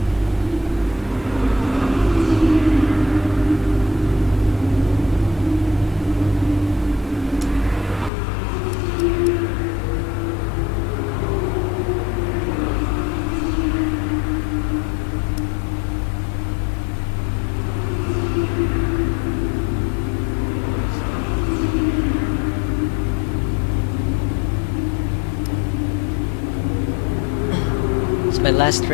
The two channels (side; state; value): right; drops out; at 8.1 s